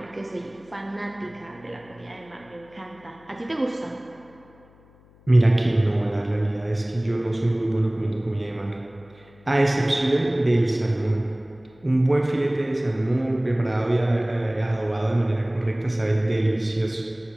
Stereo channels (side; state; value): left; noise; hum, 28 dB below the sound